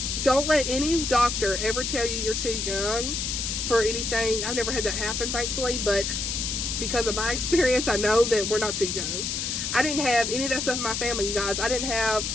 Don't let any doctor ever tell you you're too young for anything. I've never had that happen, thankfully. But because of my experience, I know that we're not too young. I didn't have any of that stuff in my family, you guys. I didn't have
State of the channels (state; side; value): noise; left; hiss, 2 dB below the sound